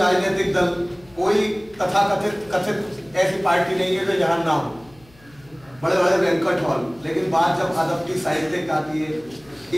दल, कोई कथित ऐसी पार्टी नहीं है जो यहाँ ना हो, बड़े बड़े बैंक्वेट हॉल, लेकिन बात जब अदब की साहित्य की आती है,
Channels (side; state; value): left; noise; hum, 27 dB below the sound